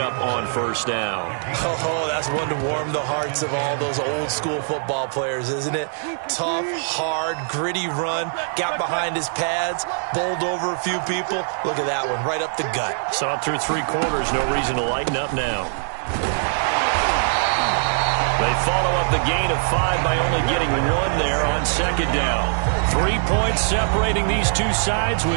on first down. Oh, that's one to warm the hearts of all those old school football players, isn't it? Tough, hard, gritty run. Got behind his pads. Bowled over a few people. Look at that one, right up the gut. Saw it through 3 quarters. No reason to lighten up now. They follow up the gain of 5 by only getting 1 there on second down. 3 points separating these two sides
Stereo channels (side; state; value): left; silent; 64 dB below the other